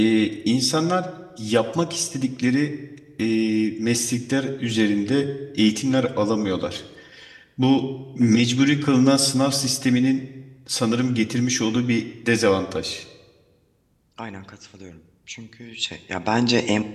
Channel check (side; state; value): both; identical; correlation 1.00